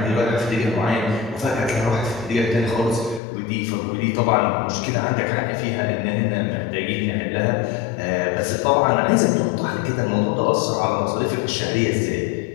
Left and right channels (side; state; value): right; drops out; at 3.2 s